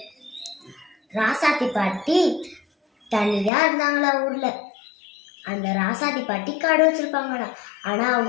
ராசாதி பாட்டி தனியா இருந்தாங்களா ஊர்ல. அந்த ராசாதி பாட்டி கடை வச்சிருப்பாங்களா. ஆனா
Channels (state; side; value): drops out; right; at 3.5 s